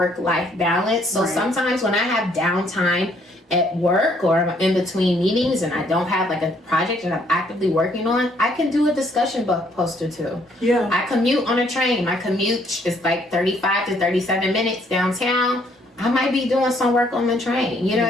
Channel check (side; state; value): both; normal; correlation 0.67